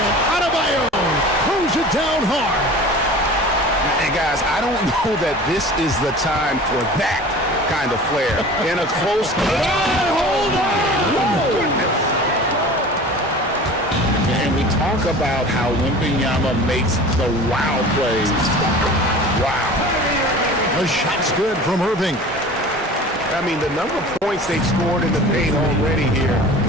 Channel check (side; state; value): both; normal; correlation 0.40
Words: Adebayo throws it down hard. And guys, I don't know that this is the time for that kind of flair in a close game. Hold on! And we talk about how Wembanyama makes the wow plays. Wow. The shot's good from Irving. I mean, the number of points they've scored in the paint already here